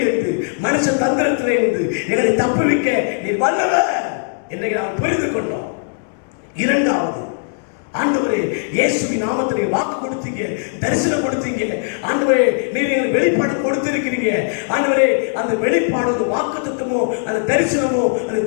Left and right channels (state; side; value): silent; right; digital silence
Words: மனுஷ தந்திரத்திலிருந்து எங்களை தப்புவிக்க நீர் வல்லவர் இன்றைக்கு நாம் புரிந்து கொண்டோம். இரண்டாவது, ஆண்டவரே இயேசுவின் நாமத்தில் வாக்கு கொடுத்தீங்க, தரிசனம் கொடுத்தீங்க. ஆண்டவரே நீர் எங்களுக்கு வெளிப்பாடு கொடுத்திருக்கிறீங்க. ஆண்டவரே அந்த வெளிப்பாடு, அந்த வாக்குத்தத்தமோ, அந்த தரிசனமோ, அந்த